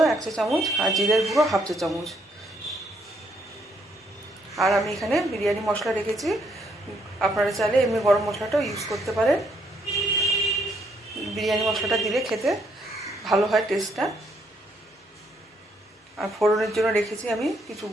1 চা চামচ আর জিরের গুঁড়ো 1/2 চা চামচ। আর আমি এখানে বিরিয়ানি মশলা রেখেছি, আপনারা চাইলে এমনি গরম মশলাটাও ইউজ করতে পারেন। বিরিয়ানি মশলাটা দিলে খেতে ভালো হয় টেস্টটা। আর ফোড়নের জন্য রেখেছি আমি কিছু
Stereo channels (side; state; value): both; normal; correlation 0.72